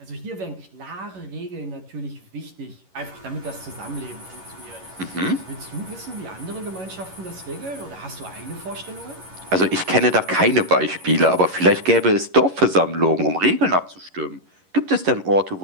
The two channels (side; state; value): left; late; 11 ms